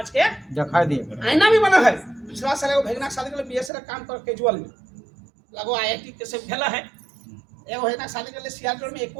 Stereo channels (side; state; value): left; drops out; at 3.7 s